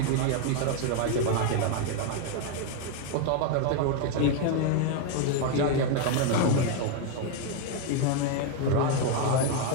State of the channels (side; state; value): both; different; correlation 0.01